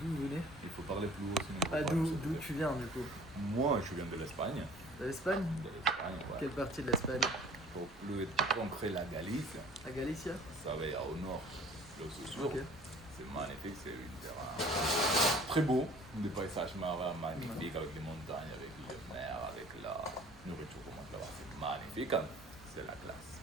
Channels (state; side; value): noise; right; rumble, 21 dB below the sound